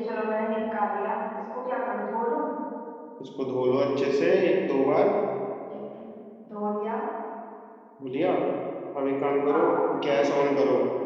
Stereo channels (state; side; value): identical; both; correlation 1.00